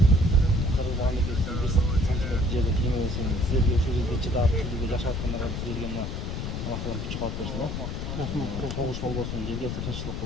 Мамлекеттин 5 сантиметр жерден кемебесин, силерге ушул жерде чыдап, силерге жашап аткандарга силерге мына Алла Таалам күч калып берсин, согуш болбосун, жерге тынччылык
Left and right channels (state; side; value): noise; left; rumble, 4 dB below the sound